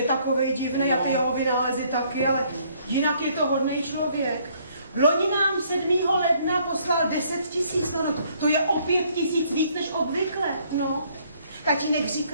takovej divný a ty jeho vynálezy taky, ale jinak je to hodnej člověk. Loni nám 7. ledna poslal 10 000, no to je o 5 000 víc než obvykle, no. Tatínek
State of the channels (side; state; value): both; inverted; correlation -0.65